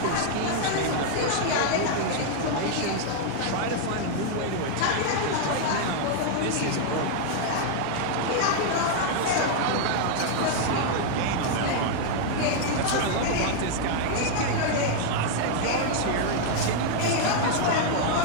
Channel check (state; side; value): different; both; correlation 0.00